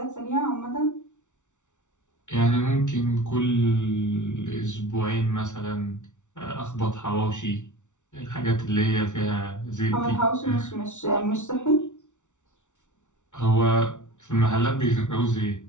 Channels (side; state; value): right; late; 0.85 ms